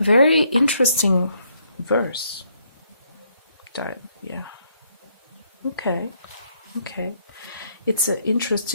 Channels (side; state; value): both; inverted; correlation -0.71